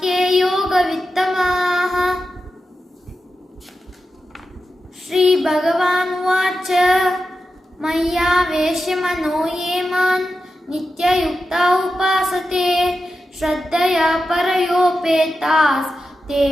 के योगवित्तमाः. श्रीभगवानुवाच मय्यावेश्य मनो ये मां नित्ययुक्ता उपासते श्रद्धया परयोपेतास् ते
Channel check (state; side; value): normal; both; correlation 0.90